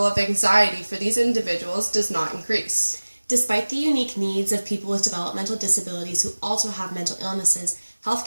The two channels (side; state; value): both; inverted; correlation -1.00